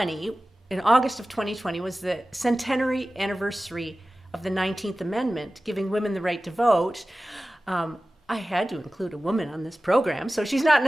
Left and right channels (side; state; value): both; normal; correlation 0.96